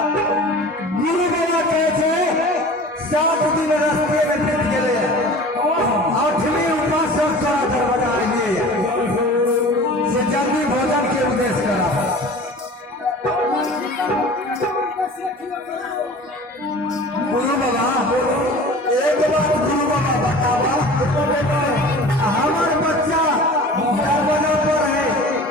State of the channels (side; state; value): both; normal; correlation 0.41